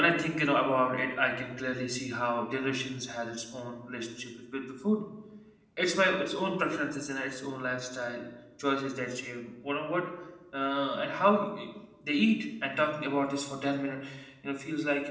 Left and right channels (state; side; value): identical; both; correlation 1.00